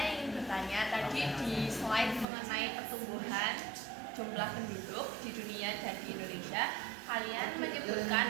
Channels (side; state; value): left; drops out; at 2.2 s